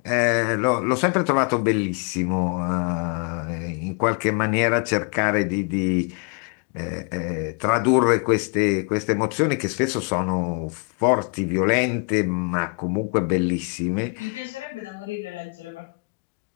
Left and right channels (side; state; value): right; quieter; 35.5 dB